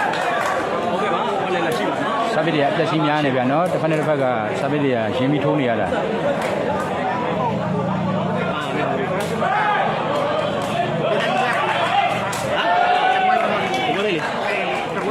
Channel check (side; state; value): both; identical; correlation 1.00